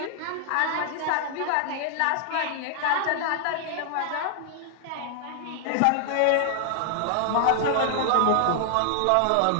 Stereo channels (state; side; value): different; both; correlation 0.00